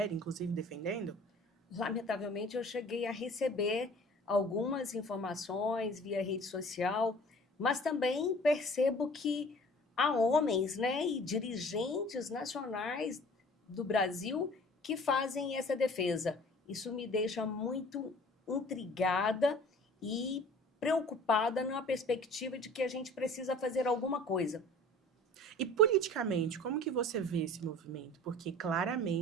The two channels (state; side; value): normal; both; correlation 0.47